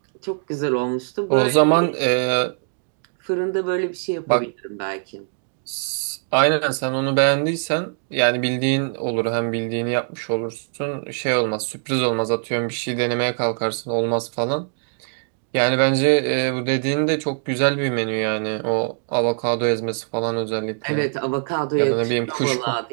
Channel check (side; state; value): left; silent; digital silence